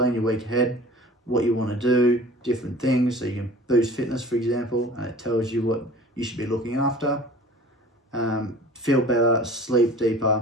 your week ahead, what you want to do, different things. So you can boost fitness, for example, and it tells you what you should be looking after. Feel better, sleep deeper,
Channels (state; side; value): normal; both; correlation 0.44